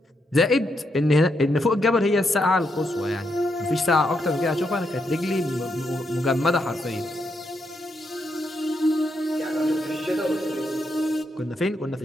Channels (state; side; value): normal; both; correlation 0.80